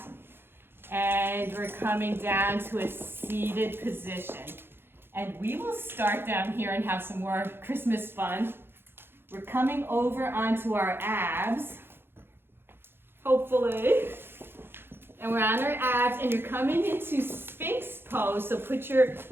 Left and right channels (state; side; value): late; left; 0.11 ms